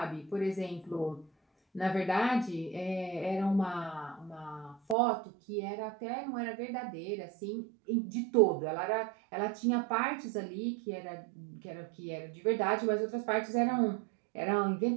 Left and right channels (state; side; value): drops out; left; at 5.0 s